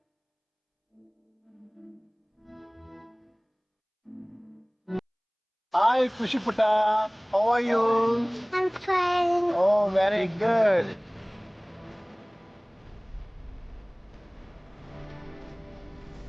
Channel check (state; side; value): identical; both; correlation 1.00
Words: Hi, Kushi Putta. How are you? I'm fine. Oh, very good.